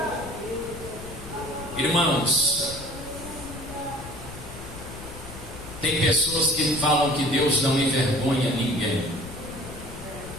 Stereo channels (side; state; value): left; noise; rumble, 13 dB below the sound